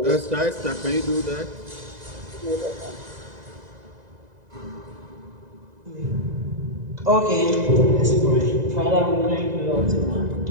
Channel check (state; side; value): late; left; 2.0 ms